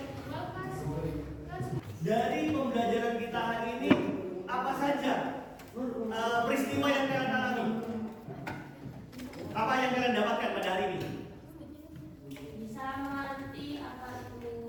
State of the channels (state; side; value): identical; both; correlation 1.00